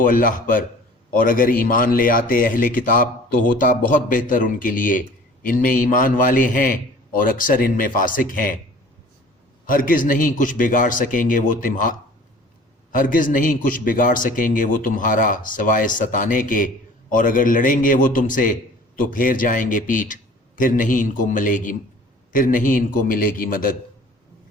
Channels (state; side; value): normal; both; correlation 0.47